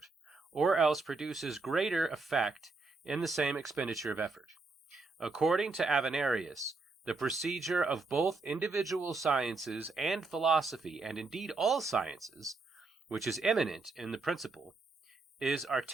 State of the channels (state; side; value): quieter; left; 3.6 dB